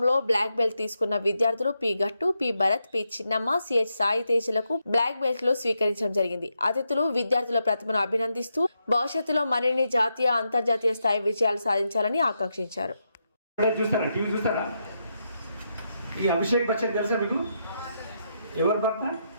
బ్లాక్ బెల్ట్ తీసుకున్న విద్యార్థులు P Gattu, P Bharat, P Chinnamma, CH Sai తేజలకు బ్లాక్ బెల్ట్లు స్వీకరించడం జరిగింది. అతిథులు విద్యార్థుల ప్రతిభను అభినందిస్తూ భవిష్యత్తులో మరిన్ని జాతీయ, అంతర్జాతీయ స్థాయి విజయాలు సాధించాలని ఆకాంక్షించారు. ఎవరు భర్త?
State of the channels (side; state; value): both; inverted; correlation -0.83